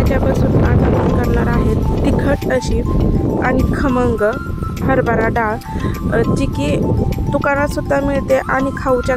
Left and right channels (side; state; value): both; identical; correlation 1.00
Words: आज आपण करणार आहे तिखट अशी आणि खमंग हरभरा डाळ, जी की दुकानात सुद्धा मिळते आणि खाऊच्या